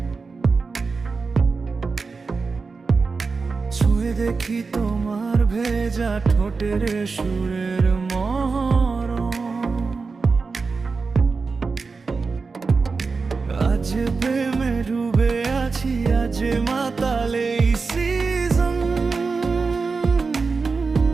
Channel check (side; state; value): left; quieter; 4.5 dB